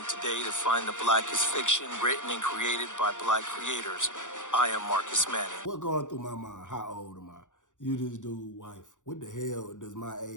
today to find the blackest fiction written and created by black creators. I am Marcus Manning. What going through my mind? How old am I? You this dude, wife. What the hell does my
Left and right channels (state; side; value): late; right; 0.86 ms